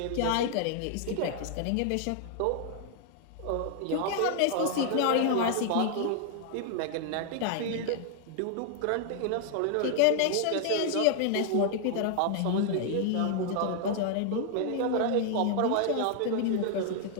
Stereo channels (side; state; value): both; different; correlation 0.00